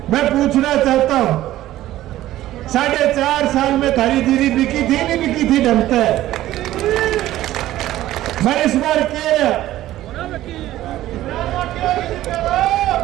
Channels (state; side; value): quieter; left; 14.5 dB